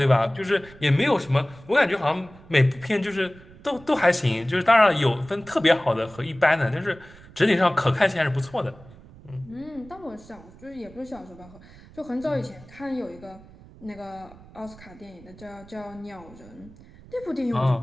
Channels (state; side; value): noise; right; rumble, 21 dB below the sound